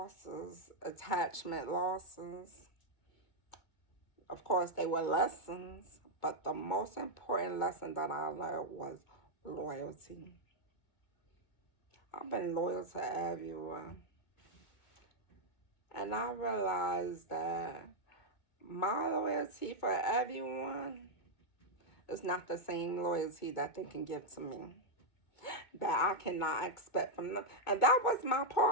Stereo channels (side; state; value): right; late; 2.2 ms